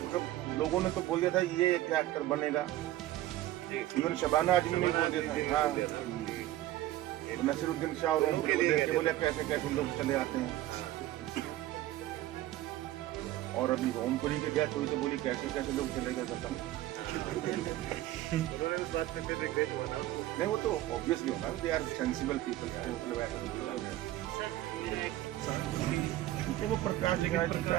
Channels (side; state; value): left; quieter; 15.0 dB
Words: लोगों ने तो बोल दिया था ये क्या एक्टर बनेगा, इवन शबाना आजमी ने बोल दिया था। हाँ, नसीरुद्दीन शाह और उनको देख के बोले कैसे कैसे लोग चले आते हैं। और अभी ओमपुरी की डेथ हुई तो बोली कैसे कैसे लोग चले गए बताओ। उन्होंने उस बात पे फिर रिग्रेट हुआ ना। नहीं वो तो ऑब्वियसली होगा, दे आर सेंसिबल पीपल। तो वो प्रकाश जी क्या